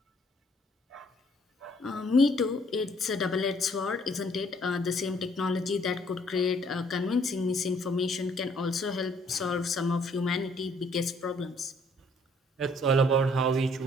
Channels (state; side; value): normal; both; correlation 0.63